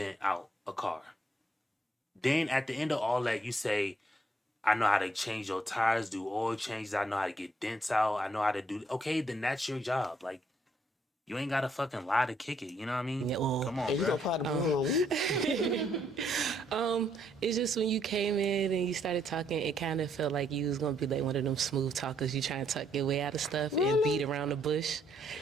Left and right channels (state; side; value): normal; both; correlation 0.71